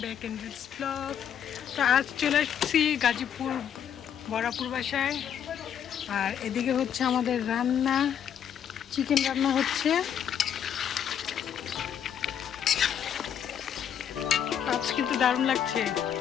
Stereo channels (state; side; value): quieter; right; 8.9 dB